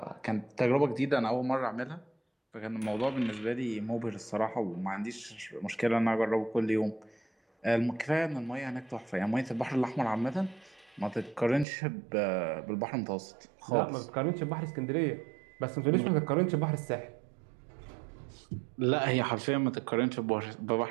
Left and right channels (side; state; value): left; drops out; at 11.7 s